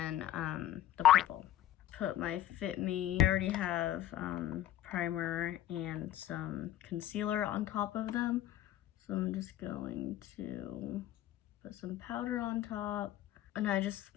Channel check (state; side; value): quieter; right; 12.5 dB